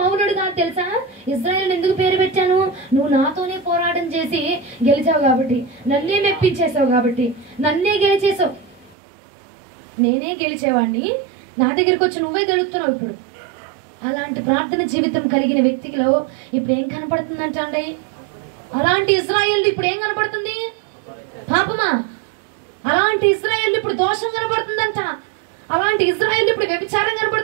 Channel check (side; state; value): left; drops out; at 9.0 s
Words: కాదు తెలుసా? ఇజ్రాయేల్ ఎందుకు పేరు పెట్టాను? నువ్వు నాతోనే పోరాటం చేసి గెలిచావు కాబట్టి, నన్నే మెప్పించేసావు కాబట్టి, నన్నే గెలిచేసావు. నేనే గెలిచేవాడిని, నా దగ్గరికి వచ్చి నువ్వే గెలుస్తున్నావు. ఇప్పుడు అలాంటి ప్రార్థన జీవితం కలిగిన వ్యక్తిలో ఇప్పుడు ఏం కనపడుతుందంట అండి? అలాంటి ఇజ్రాయేల్ ఇప్పుడు ఏం కనపడుతుంది? పాపమా. అలాంటి ఇజ్రాయేల్ ఇప్పుడు దోషం కనపడుతుందంట, అలాంటి ఇజ్రాయేల్ ఇప్పుడు వ్యభిచారం